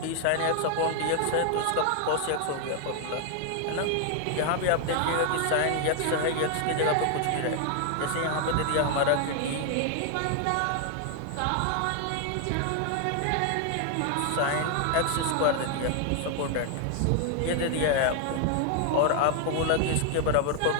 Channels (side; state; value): both; different; correlation 0.00